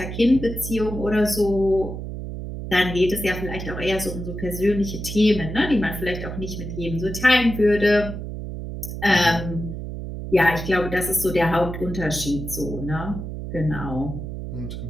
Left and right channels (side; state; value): right; noise; hum, 7 dB below the sound